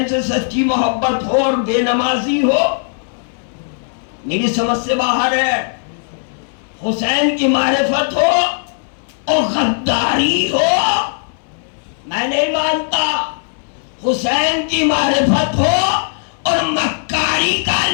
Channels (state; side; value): silent; right; 62 dB below the other